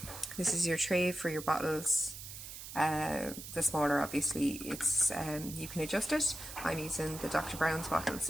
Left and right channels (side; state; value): right; noise; hiss, 11 dB below the sound